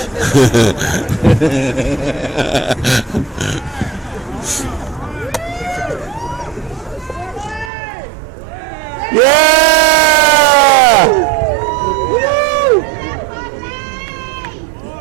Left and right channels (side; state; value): left; drops out; at 7.7 s